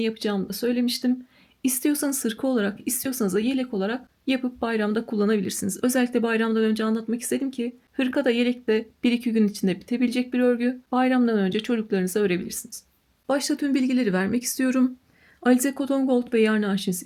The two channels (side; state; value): both; identical; correlation 1.00